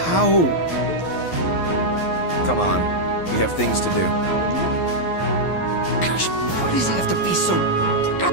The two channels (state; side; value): late; right; 11 ms